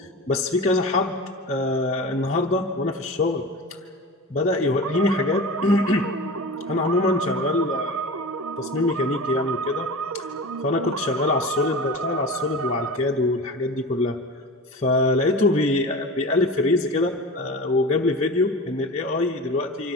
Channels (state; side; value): normal; both; correlation 0.32